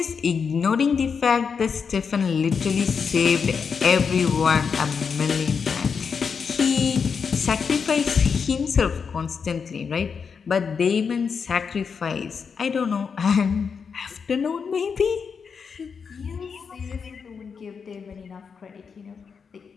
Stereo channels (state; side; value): quieter; right; 6.0 dB